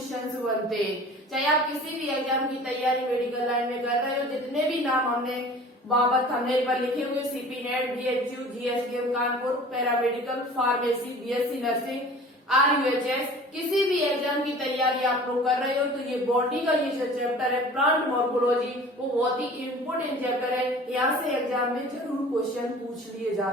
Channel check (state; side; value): normal; both; correlation 0.44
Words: बनते हैं। चाहे आप किसी भी एग्जाम की तैयारी मेडिकल लाइन में कर रहे हो, जितने भी नाम हमने बाबत थंबनेल पर लिखे हुए CP NET, BHU, GSKM Kanpur, paramedical, pharmacy, BSc nursing, RUHS, किसी भी एग्जाम की तैयारी आप लोग कर रहे हो तो ये बॉटनी का ये जो चैप्टर है प्लांट मॉर्फोलॉजी वो बहुत ही इम्पोर्टेंट चैप्टर है। यहाँ से एग्जाम में जरूर क्वेश्चन पूछ लिए